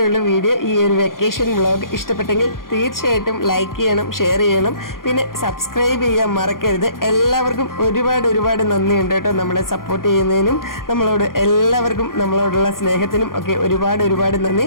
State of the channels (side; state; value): right; late; 0.91 ms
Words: വീഡിയോ. ഈ ഒരു വെക്കേഷൻ വ്ളോഗ് ഇഷ്ടപ്പെട്ടെങ്കിൽ തീർച്ചയായിട്ടും ലൈക്ക് ചെയ്യണം, ഷെയർ ചെയ്യണം, പിന്നെ സബ്സ്ക്രൈബ് ചെയ്യാൻ മറക്കരുത്. എല്ലാവർക്കും ഒരുപാട് നന്ദിയുണ്ട് കേട്ടോ നമ്മളെ സപ്പോർട്ട് ചെയ്യുന്നതിനും എല്ലാവർക്കും നമ്മളോടുള്ള സ്നേഹത്തിനും ഒക്കെ ഒരുപാട് നന്ദി.